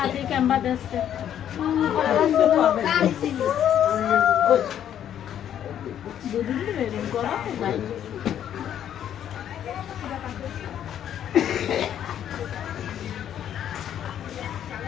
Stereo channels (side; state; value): right; quieter; 10.1 dB